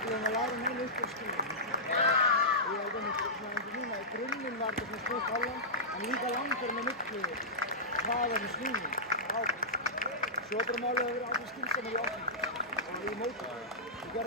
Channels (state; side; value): normal; both; correlation -0.14